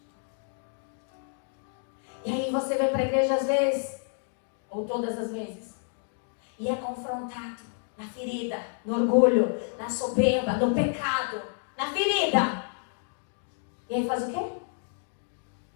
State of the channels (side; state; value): right; silent; 56 dB below the other